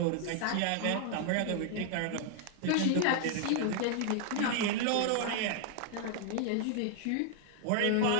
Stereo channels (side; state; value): both; different; correlation 0.00